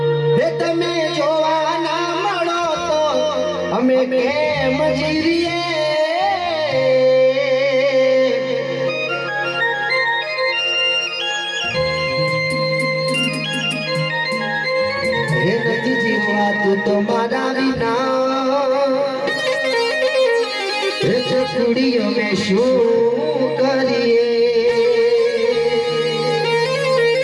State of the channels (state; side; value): identical; both; correlation 1.00